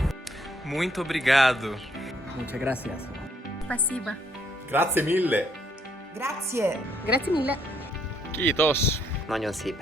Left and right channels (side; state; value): both; normal; correlation 0.69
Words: Muito obrigado. Muchas gracias. Спасибо. Grazie mille. Grazie. Grazie mille. Kiitos. Nagyon